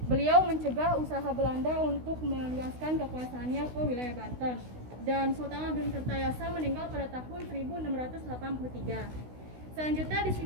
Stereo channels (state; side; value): late; left; 16 ms